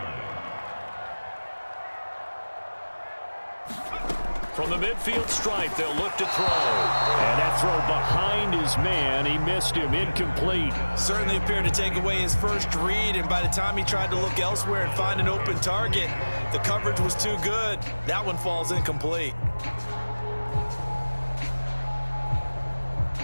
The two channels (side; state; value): both; inverted; correlation -1.00